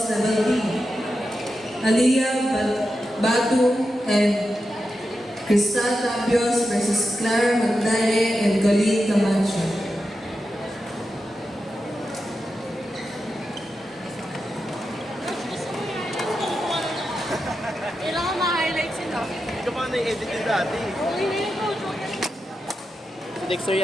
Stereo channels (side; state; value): both; normal; correlation 0.89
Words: level D, Aliyah Batu and Crystal Tabios versus Clara Magnaye and Colleen Camacho. Kailangan ma-highlight sila. Hindi ka pa na-edit yung dati. Okay na yun, coach. Si Dexter